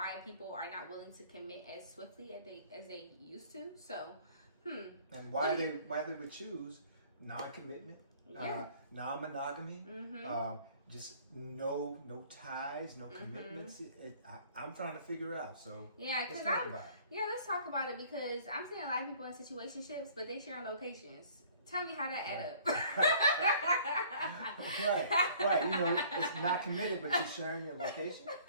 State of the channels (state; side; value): inverted; both; correlation -0.54